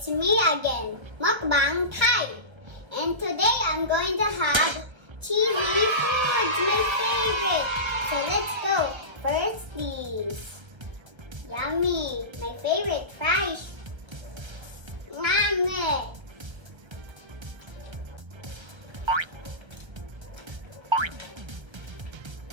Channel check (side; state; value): left; late; 1.3 ms